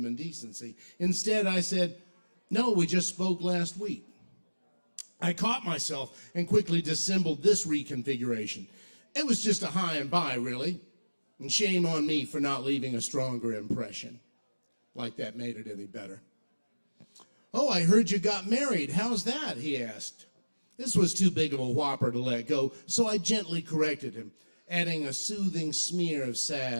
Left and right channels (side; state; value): both; inverted; correlation -1.00